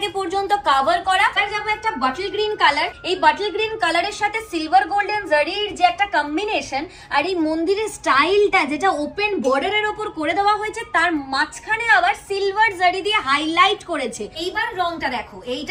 পর্যন্ত কভার করা। আর যাবো একটা বটল গ্রিন কালার, এই বটল গ্রিন কালারের সাথে সিলভার গোল্ডেন জারির যে একটা কম্বিনেশন, আর এই মন্দিরের স্টাইলটা যেটা ওপেন বর্ডারের ওপর করে দেওয়া হয়েছে, তার মাঝখানে আবার সিলভার জারি দিয়ে হাইলাইট করেছে। এইবার রংটা দেখো,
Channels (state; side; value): identical; both; correlation 1.00